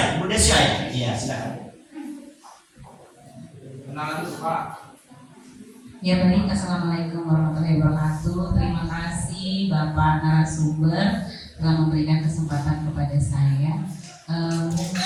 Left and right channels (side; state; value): both; identical; correlation 1.00